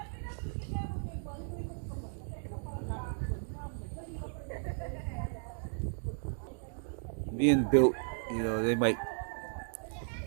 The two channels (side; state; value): left; silent; digital silence